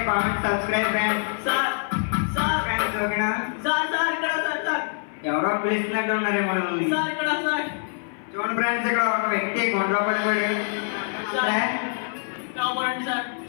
comment, subscribe friends. Sir friends ఓకేనా? సార్ ఇక్కడ సార్ ఎవరో పిలుస్తున్నట్టు ఉన్నారేమో మనల్ని. సార్ ఇక్కడ సార్ చూడండి ఫ్రెండ్స్, ఇక్కడ ఒక వ్యక్తి గుండెలో పడిపోయాడు. కాపాడండి సార్.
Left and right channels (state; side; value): silent; right; 56 dB below the other